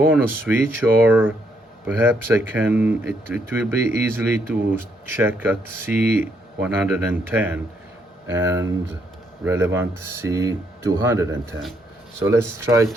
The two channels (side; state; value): both; normal; correlation 0.74